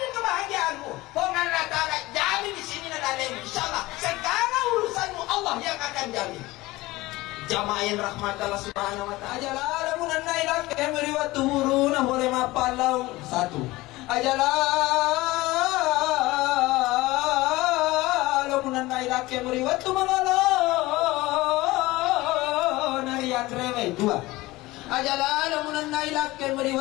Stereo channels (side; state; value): right; quieter; 19.6 dB